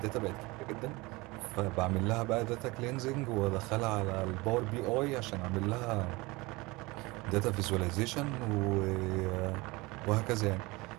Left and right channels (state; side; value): quieter; left; 23.2 dB